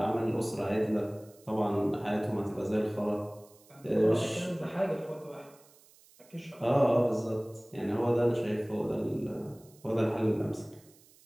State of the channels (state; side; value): noise; right; hiss, 27 dB below the sound